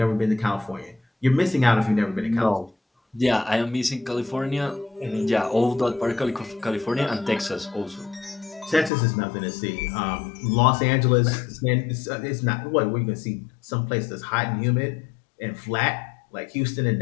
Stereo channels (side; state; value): right; drops out; at 8.9 s